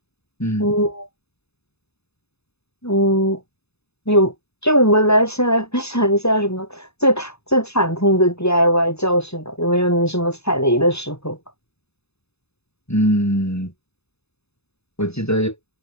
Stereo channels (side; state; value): right; late; 0.79 ms